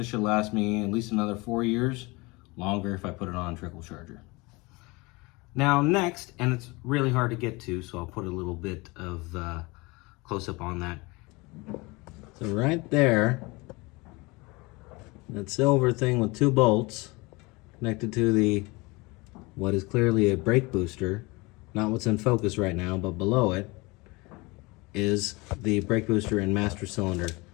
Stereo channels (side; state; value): right; quieter; 24.8 dB